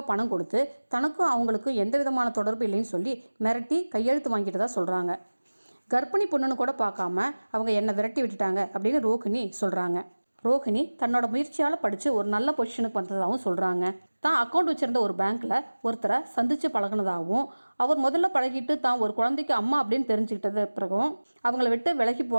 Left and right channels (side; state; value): both; inverted; correlation -1.00